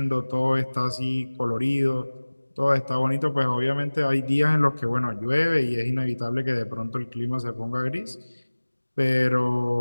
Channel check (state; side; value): inverted; both; correlation -1.00